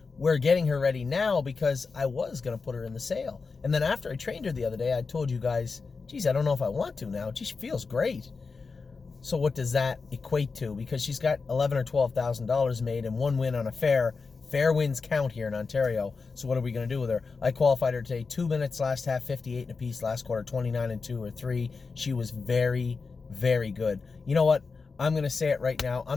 we're getting her ready now because I was going to put her in the sale. And then after I trained her the other day, I told you guys, geez, I don't know if I want to now. She feels great. So what does that equate to? Because she's got $11,000 or $12,000 made and 1 win on a fair. Fair wins count here in Ontario. So what are we going to do with her? I qualified her today. 2 minutes last half, 58 and a piece. Last quarter, 29 and 2 or 3. She was very, very good. You know what? I'm going to say it right now.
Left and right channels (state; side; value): quieter; right; 4.6 dB